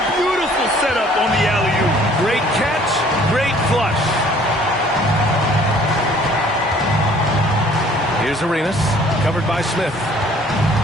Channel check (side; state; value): both; normal; correlation 0.56